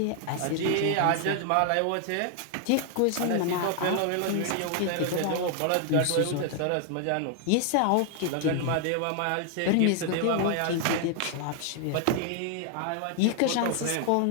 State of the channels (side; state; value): both; different; correlation 0.00